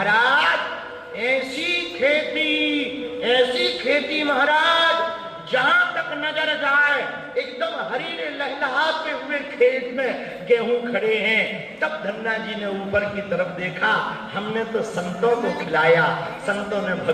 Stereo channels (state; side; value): identical; both; correlation 1.00